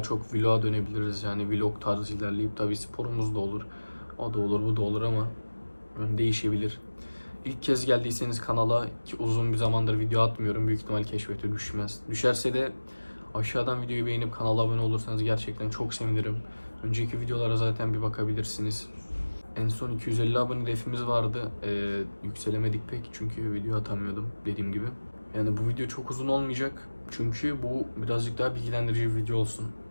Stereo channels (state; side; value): inverted; both; correlation -1.00